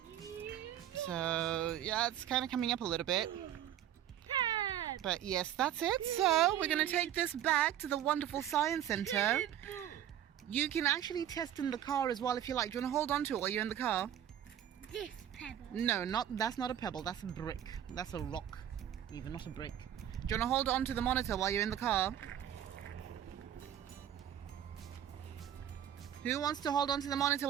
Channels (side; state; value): left; quieter; 10.9 dB